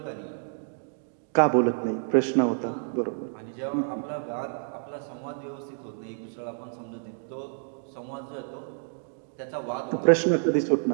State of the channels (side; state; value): left; silent; digital silence